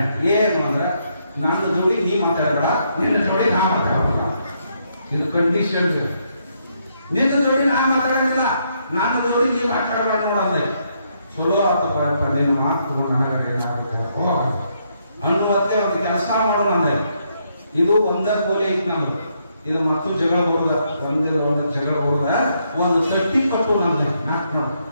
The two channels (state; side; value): inverted; both; correlation -0.75